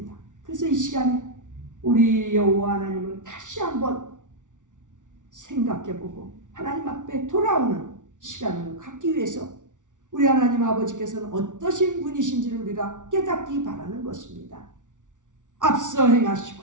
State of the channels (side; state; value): left; late; 0.87 ms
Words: 그래서 이 시간에 우리 여호와 하나님을 다시 한번 생각해보고 하나님 앞에 돌아오는 시간을 갖기 위해서 우리 하나님 아버지께서는 어떠신 분이신지를 우리가 깨닫기 바라는 것입니다. 앞서 행하시고